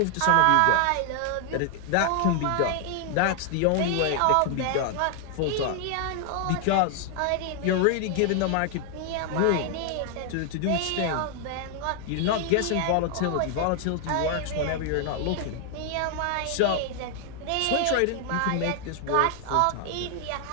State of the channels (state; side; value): different; both; correlation 0.00